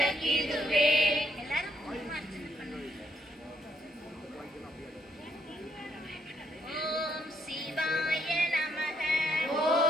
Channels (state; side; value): normal; both; correlation 0.74